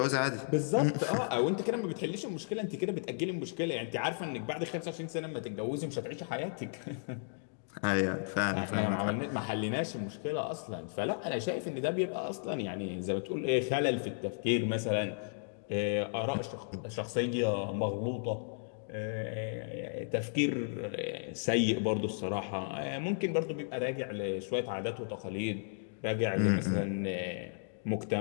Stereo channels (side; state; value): right; silent; digital silence